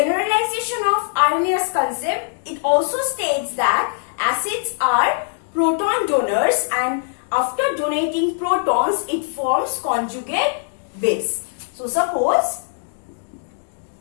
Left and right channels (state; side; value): silent; right; digital silence